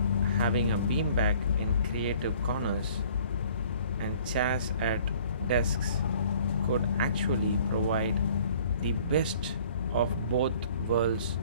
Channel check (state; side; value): inverted; both; correlation -0.54